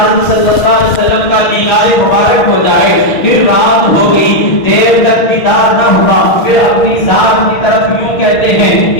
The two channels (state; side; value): late; right; 6.4 ms